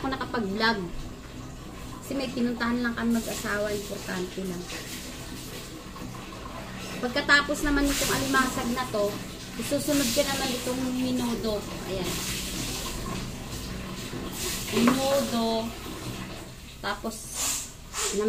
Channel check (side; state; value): both; identical; correlation 1.00